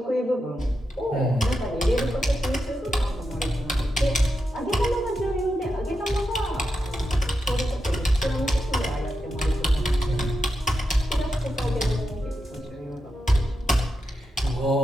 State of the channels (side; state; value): both; normal; correlation 0.87